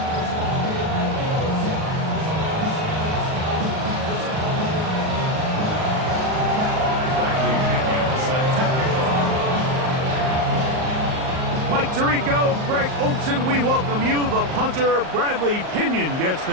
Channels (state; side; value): late; left; 38 ms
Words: Mike Tirico, Greg Olson, we welcome you. The punter, Bradley Pinion, gets